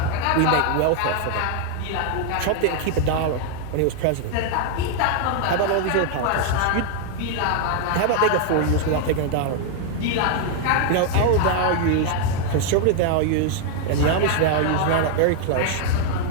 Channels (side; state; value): both; different; correlation 0.00